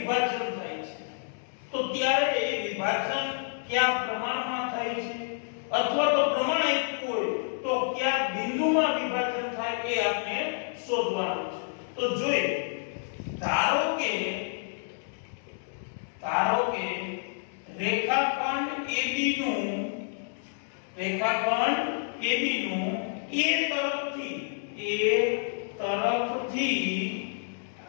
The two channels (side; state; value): right; silent; digital silence